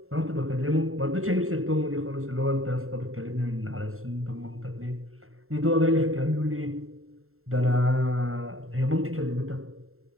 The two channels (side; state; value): left; late; 0.62 ms